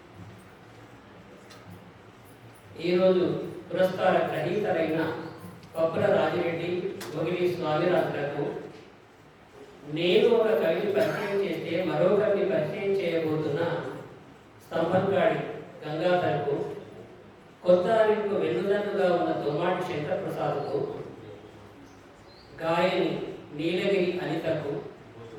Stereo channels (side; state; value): both; identical; correlation 1.00